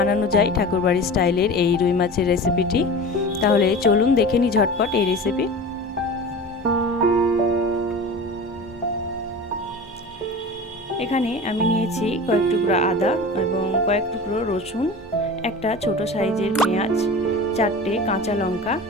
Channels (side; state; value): both; normal; correlation 0.34